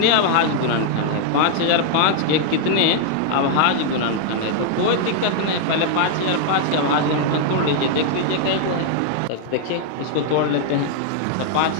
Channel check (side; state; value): both; different; correlation 0.00